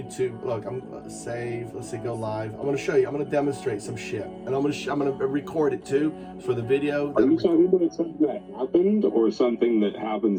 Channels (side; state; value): both; identical; correlation 1.00